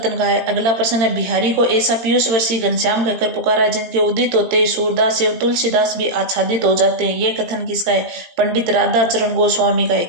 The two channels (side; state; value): left; late; 18 ms